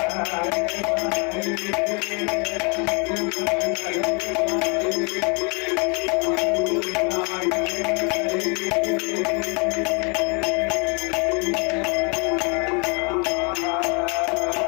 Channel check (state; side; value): quieter; right; 33.8 dB